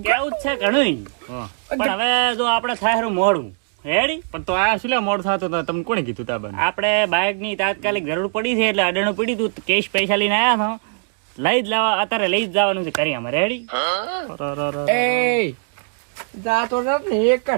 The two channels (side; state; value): left; silent; digital silence